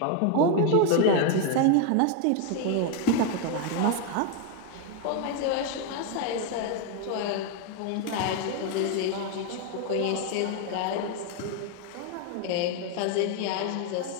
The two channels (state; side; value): different; both; correlation 0.01